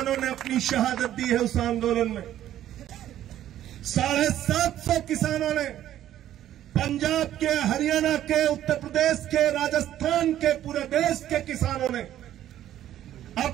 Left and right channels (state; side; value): quieter; left; 12.1 dB